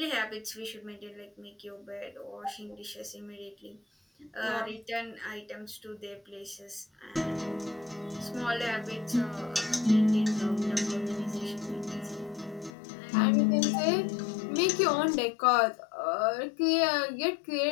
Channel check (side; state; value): right; drops out; at 12.7 s